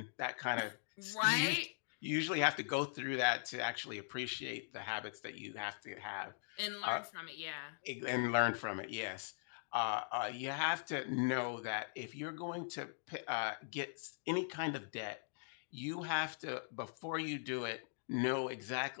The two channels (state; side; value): silent; right; digital silence